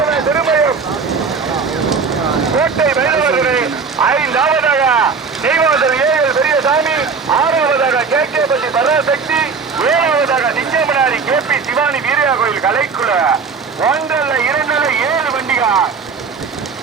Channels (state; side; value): quieter; left; 5.2 dB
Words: திருமயம் கோட்டை வைரவர்களை 5ஆவதாக நெய்வாசல் ஏஎல் பெரியசாமி 6ஆவதாக கேகேபட்டி பராசக்தி 7ஆவதாக நிச்சயமனாரி கேபி சிவானி வீரியா கோயில் கலைக்குழு 1 2 7 வண்டிகள்